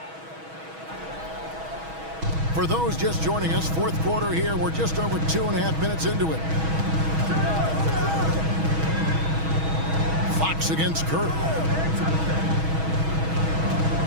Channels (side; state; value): left; late; 6.2 ms